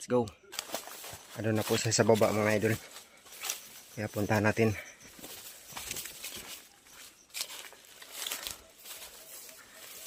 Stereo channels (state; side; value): identical; both; correlation 1.00